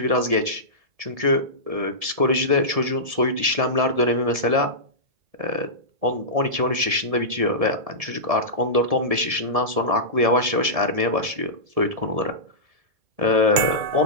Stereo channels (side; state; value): left; late; 1.7 ms